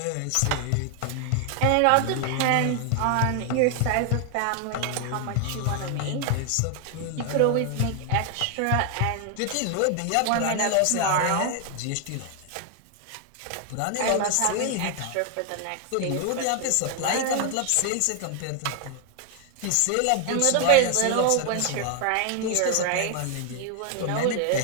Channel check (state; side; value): different; both; correlation 0.00